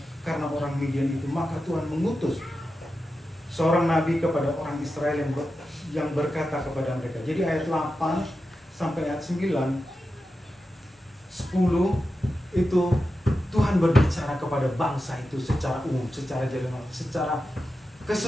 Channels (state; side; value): normal; both; correlation 0.91